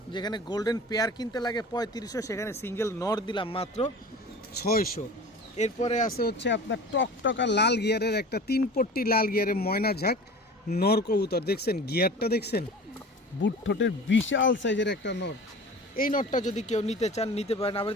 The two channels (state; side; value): normal; both; correlation 0.38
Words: যেখানে গোল্ডেন পেয়ার কিনতে লাগে 3500, সেখানে সিঙ্গেল নর দিলাম মাত্র 600। এরপরে আছে হচ্ছে আপনার টকটকা লাল গিয়ারের একটা 3 পট্টি লাল গিয়ারের ময়না ঝাঁক নর কবুতর। দেখছেন গিয়ারটা, দেখছেন বুট ঠোঁটের বিশাল সাইজের একটা নর। এই নটটা যদি কেউ নিতে চান নিতে পারেন। আবার